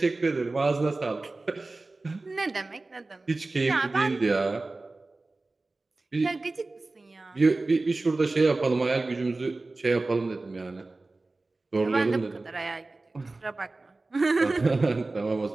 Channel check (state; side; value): quieter; left; 3.3 dB